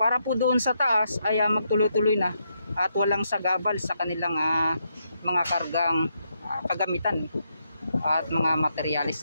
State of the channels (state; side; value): inverted; both; correlation -0.79